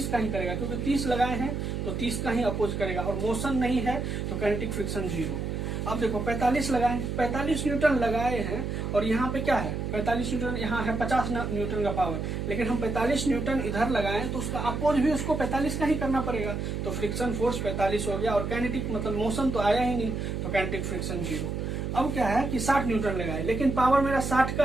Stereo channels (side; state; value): right; noise; hum, 3 dB below the sound